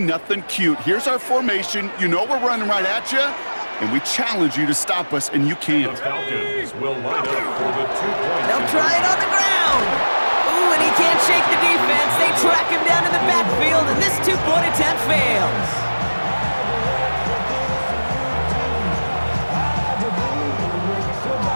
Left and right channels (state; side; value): inverted; both; correlation -1.00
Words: cute. Here's our formation. You know we're running right at you, and we challenge you to stop us, and you can't. The Falcons will line up for the 2 points. They'll try it on the ground. Ooh, and he can't shake the defense. They track him down in the backfield, and this two-point attempt fails.